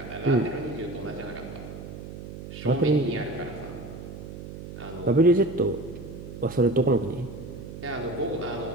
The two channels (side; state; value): right; noise; hum, 11 dB below the sound